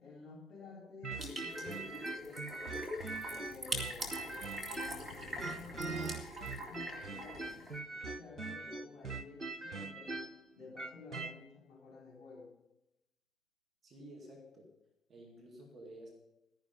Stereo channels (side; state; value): both; normal; correlation 0.58